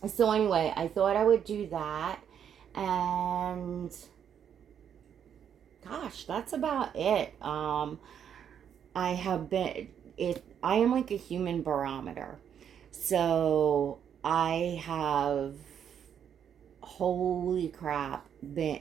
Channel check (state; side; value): quieter; left; 8.6 dB